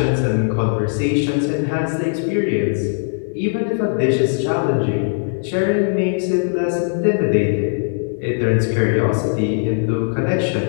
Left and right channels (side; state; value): right; silent; digital silence